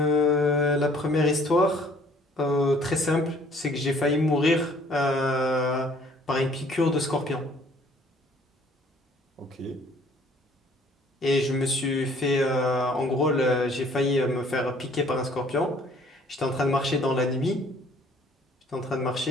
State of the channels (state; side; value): normal; both; correlation 0.58